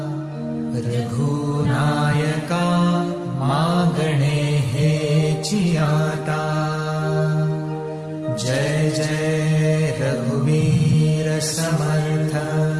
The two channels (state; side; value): identical; both; correlation 1.00